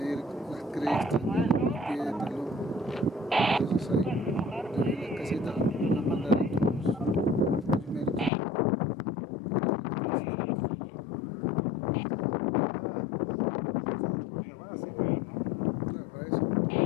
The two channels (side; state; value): right; drops out; at 8.3 s